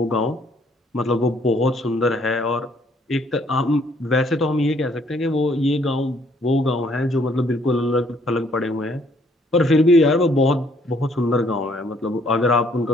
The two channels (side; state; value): both; normal; correlation 0.65